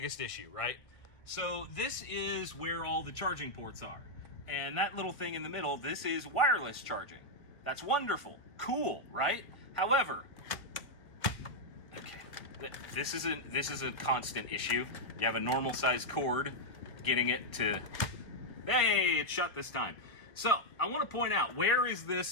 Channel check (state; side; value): late; right; 1.2 ms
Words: issue, right? So this is where all the charging ports are. And that little thing in the middle, this is wireless charging. That's wonderful. Cool, right? However, okay, this is a constant issue. You have a normal sized cord, getting it to, hey, it shut this time. So I want to point out, where is